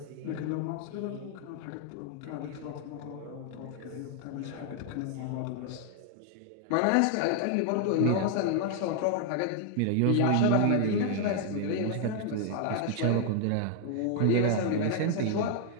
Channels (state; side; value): different; both; correlation 0.00